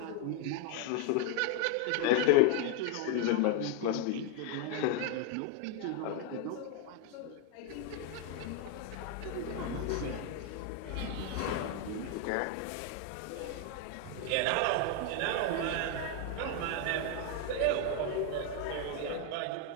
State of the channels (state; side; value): different; both; correlation 0.01